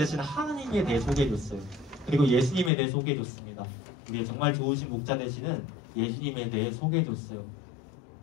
하나님에 대해 소개해줬어요. 그리고 예수님에 대해 소개해줬습니다. 우리의 정말 좋으신 목자 되시는 예수님에 대해 소개해줬어요.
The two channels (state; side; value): drops out; right; at 2.7 s